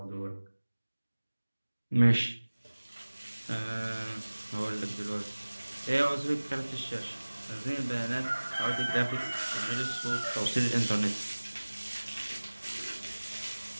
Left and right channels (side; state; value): both; inverted; correlation -1.00